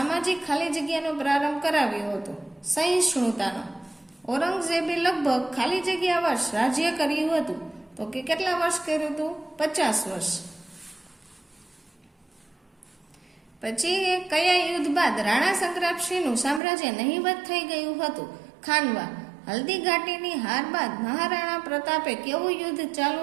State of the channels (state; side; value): drops out; left; at 16.6 s